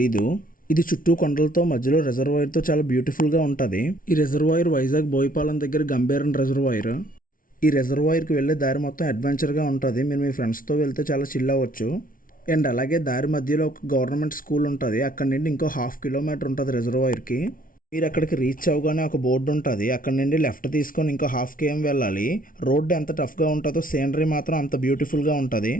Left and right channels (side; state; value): right; late; 0.40 ms